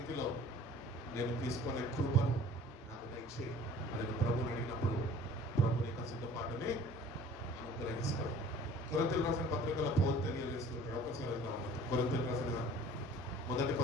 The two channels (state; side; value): normal; both; correlation 0.47